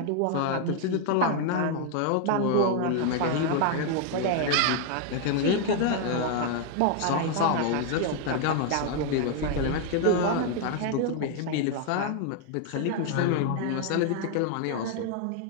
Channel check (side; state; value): both; different; correlation 0.00